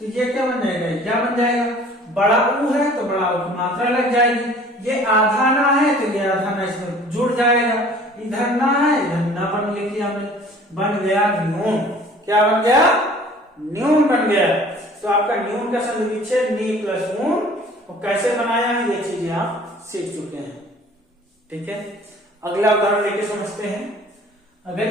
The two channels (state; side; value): normal; both; correlation 0.50